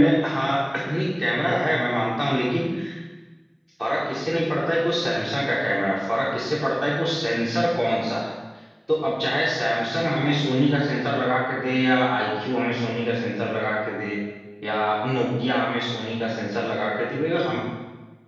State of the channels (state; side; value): identical; both; correlation 1.00